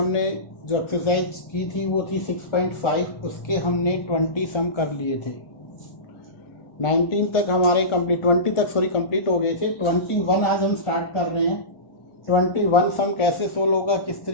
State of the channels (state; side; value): late; right; 1.4 ms